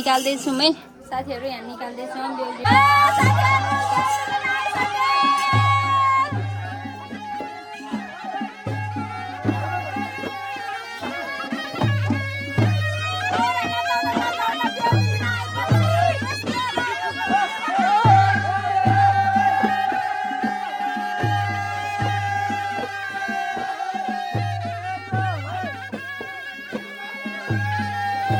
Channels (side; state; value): both; identical; correlation 1.00